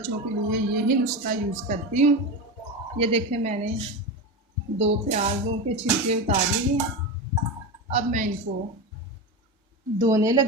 के लिए यही नुस्खा यूज़ करती हूँ। ये देखें, मैंने 2 प्याज़ों के छिलके उतार लिए। अब मैं इनको धोने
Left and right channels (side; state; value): both; normal; correlation 0.19